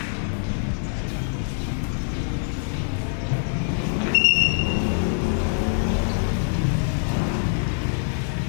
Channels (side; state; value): right; silent; 55 dB below the other